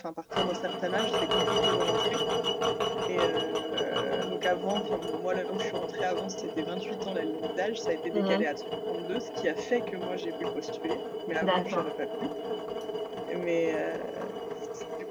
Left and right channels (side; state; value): both; identical; correlation 1.00